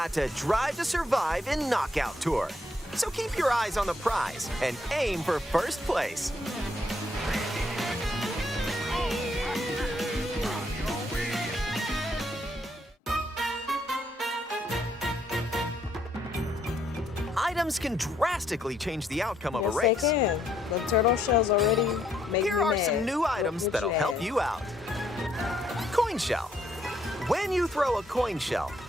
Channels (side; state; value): both; normal; correlation 0.71